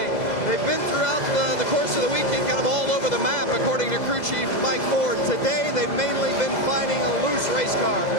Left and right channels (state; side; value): late; right; 2.0 ms